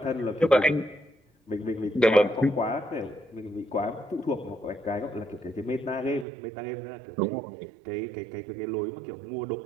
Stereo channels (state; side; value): drops out; left; at 6.2 s